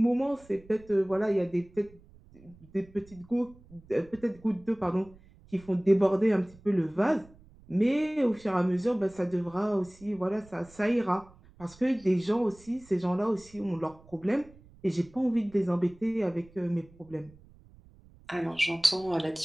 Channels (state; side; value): noise; right; rumble, 25 dB below the sound